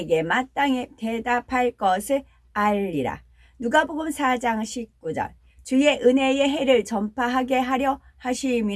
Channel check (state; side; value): identical; both; correlation 1.00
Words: 마땅히 대답할 것을 알리라. 누가복음 4장 19절. 주의 은혜의 해를 전파하게 하려